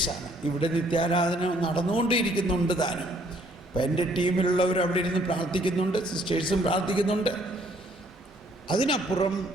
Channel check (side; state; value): both; normal; correlation 0.64